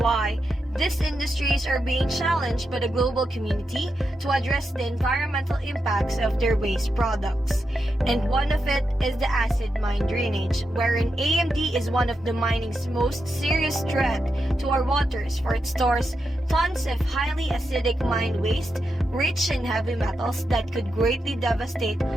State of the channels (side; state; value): both; normal; correlation 0.86